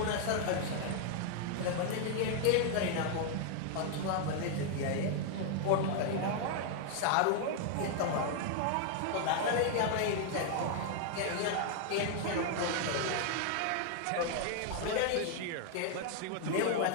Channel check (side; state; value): both; different; correlation 0.00